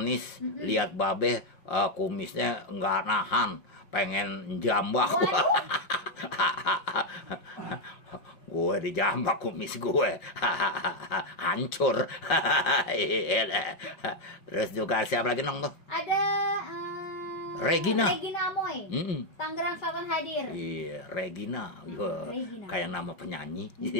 lihat babe kumisnya nggak nahan, pengen jambak. Gue dijambak kumis gue. Hancur. Terus juga siapa lagi nong tuh? Ada Regina Amoy. Tangerang Selatan hadir. Iya, Regina. Kayak nama penyanyi.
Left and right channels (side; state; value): right; late; 5.8 ms